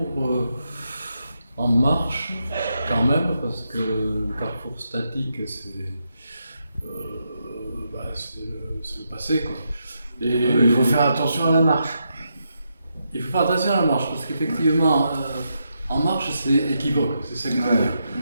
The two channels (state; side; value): inverted; both; correlation -0.82